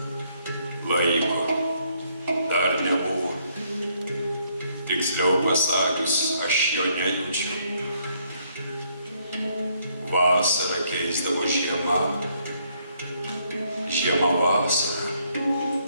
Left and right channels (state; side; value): inverted; both; correlation -0.70